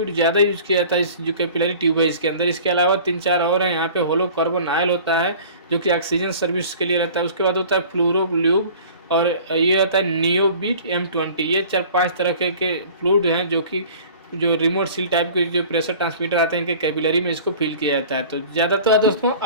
ज़्यादा यूज़ किया जाता है इस जो कैपिलरी ट्यूब है इसके अंदर। इसके अलावा 3-4 और हैं। यहाँ पे होलो कार्बन ऑयल होता है जो कि ऑक्सीजन सर्विस के लिए रहता है। उसके बाद होता है फ्लोरोल्यूब, और ये आता है नियोबिट M20। ये 4-5 तरह के फ्लूइड हैं जो कि जो रिमोट सील टाइप के जो प्रेशर ट्रांसमीटर आते हैं इनके कैपिलरी में इसको फिल किया जाता है। तो ज़्यादा तो दोस्तों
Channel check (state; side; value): inverted; both; correlation -0.45